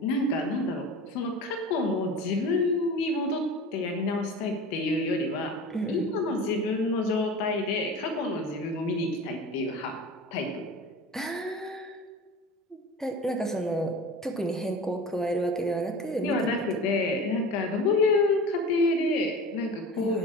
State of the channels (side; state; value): both; normal; correlation 0.35